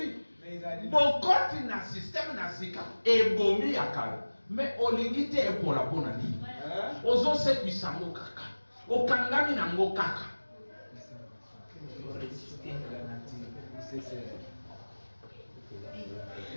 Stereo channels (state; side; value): inverted; both; correlation -1.00